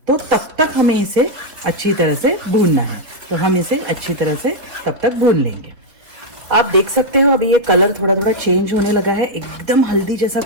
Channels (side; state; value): left; late; 3.7 ms